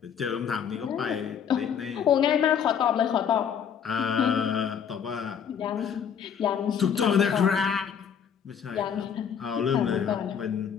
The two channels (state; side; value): quieter; right; 7.9 dB